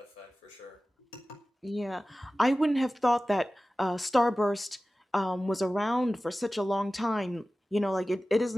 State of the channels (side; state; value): both; normal; correlation 0.96